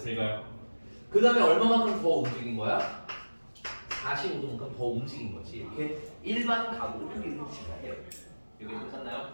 그 다음에 얼마만큼 더 움직인 거야? 45도만큼 더 움직인 거지. 이렇게 일반 각으로 표기를 해주시면 해요. 여기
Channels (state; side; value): inverted; both; correlation -1.00